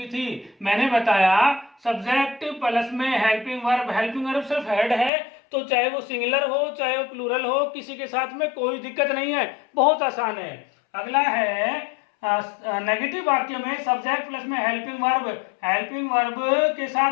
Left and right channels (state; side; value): drops out; right; at 5.1 s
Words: थी। मैंने बताया सब्जेक्ट प्लस में हेल्पिंग वर्ब सिर्फ हेड है, तो चाहे वो सिंगुलर हो चाहे वो प्लूरल हो, किसी के साथ में कोई दिक्कत नहीं है, बहुत आसान है। अगला है नेगेटिव वाक्य में सब्जेक्ट प्लस में हेल्पिंग वर्ब के